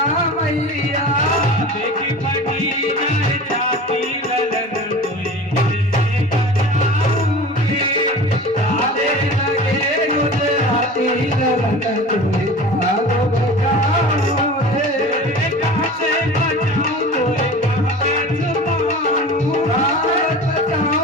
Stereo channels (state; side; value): normal; both; correlation 0.37